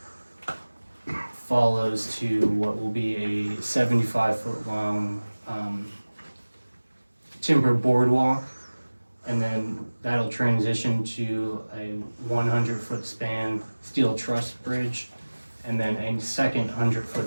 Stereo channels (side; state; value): both; inverted; correlation -1.00